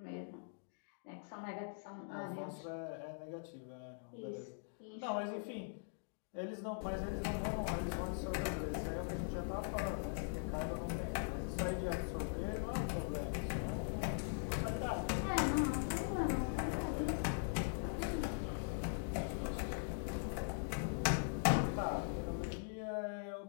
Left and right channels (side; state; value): right; silent; digital silence